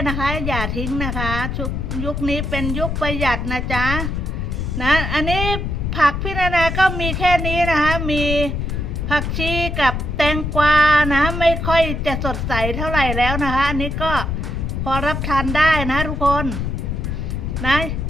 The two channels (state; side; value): noise; left; rumble, 2 dB below the sound